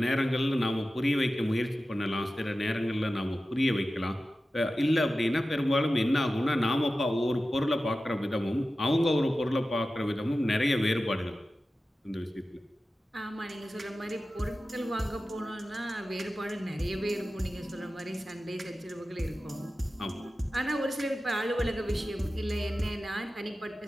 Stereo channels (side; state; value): both; normal; correlation 0.94